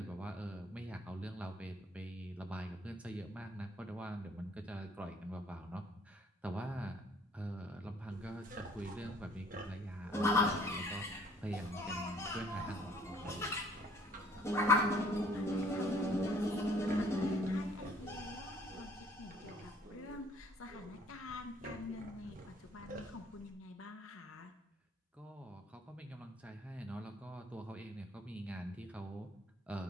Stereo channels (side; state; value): both; normal; correlation 0.59